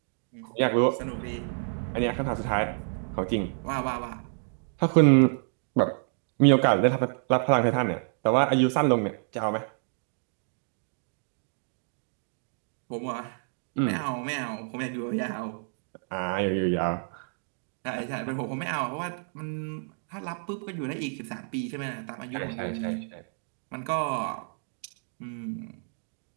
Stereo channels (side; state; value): left; silent; digital silence